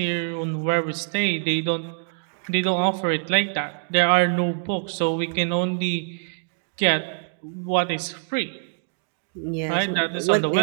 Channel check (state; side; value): silent; left; digital silence